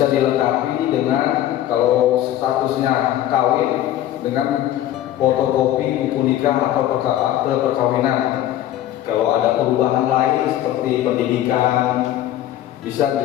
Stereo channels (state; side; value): quieter; right; 12.6 dB